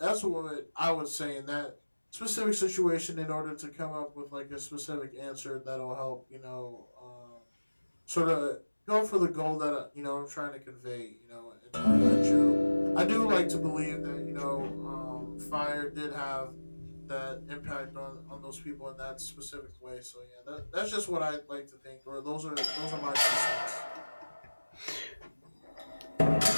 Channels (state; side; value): inverted; both; correlation -1.00